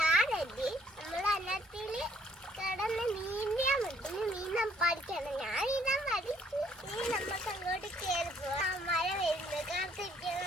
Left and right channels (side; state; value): both; normal; correlation 0.65